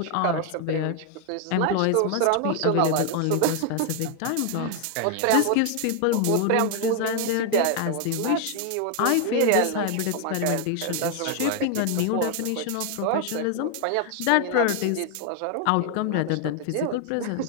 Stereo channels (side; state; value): both; different; correlation 0.00